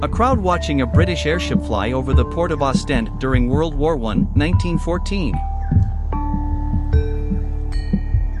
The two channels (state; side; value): identical; both; correlation 1.00